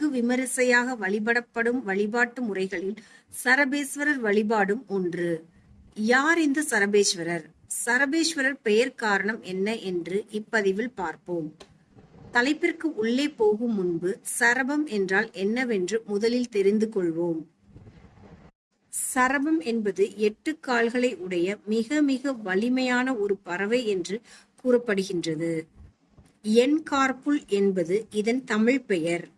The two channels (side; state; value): both; identical; correlation 1.00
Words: விமரிசையாக வழிபடப்படும் வழிபாட்டு முறைகளில் சரபேஸ்வரர் வழிபாடும் ஒன்று. யார் இந்த சரபேஸ்வரர்? சரபேஸ்வரர் பெயர் காரணம் என்ன என்று இப்பதிவில் பார்ப்போம். தலைப்பிற்கு உள்ளே போகும் முன்பு சரபம் என்றால் என்னவென்று முதலில் தெரிந்து கொள்வோம். சரபம் என்பது 8 கால்களை உடைய மிக மிக வலிமையான ஒரு பறவை என்று கூறப்படுகின்றது. என்கார்புல் என்பது இதன் தமிழ் பெயர்.